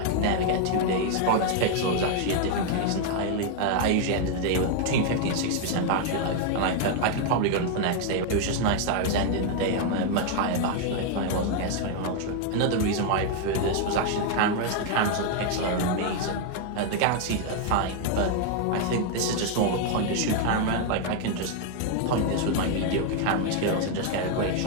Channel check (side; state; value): both; different; correlation 0.00